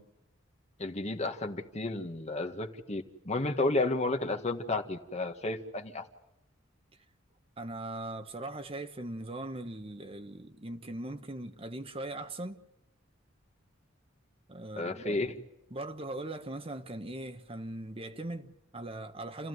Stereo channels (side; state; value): both; normal; correlation 0.41